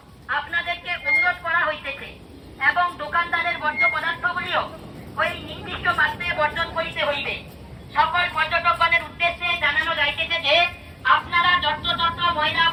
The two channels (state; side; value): identical; both; correlation 1.00